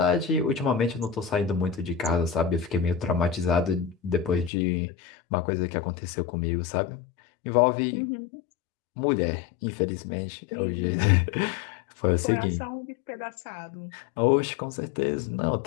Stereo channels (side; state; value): right; drops out; at 4.5 s